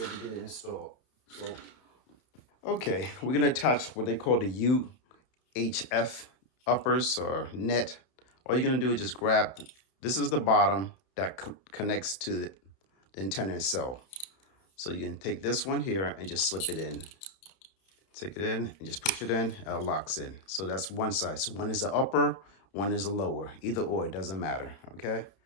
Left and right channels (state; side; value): late; right; 31 ms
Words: to get it installed. So, okay, we're gonna attach what they call the UHF uppers or net. All you're gonna do is just grab, this is the bottom that connects to the antenna itself. So you can take this one here and just slip it in. Take it in and just push it in, and it locks in. So that's one side. So one is the upper, one is the lower. Either or, it doesn't matter, okay?